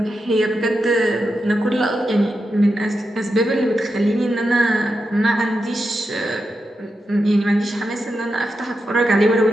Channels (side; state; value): both; normal; correlation 0.87